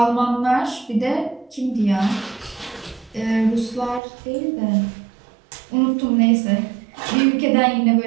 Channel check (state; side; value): drops out; left; at 4.0 s